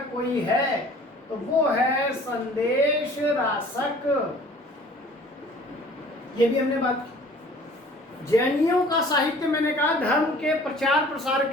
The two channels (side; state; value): both; normal; correlation 0.50